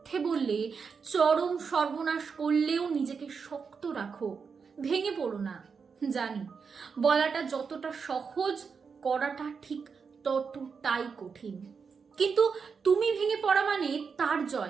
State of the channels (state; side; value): quieter; left; 5.7 dB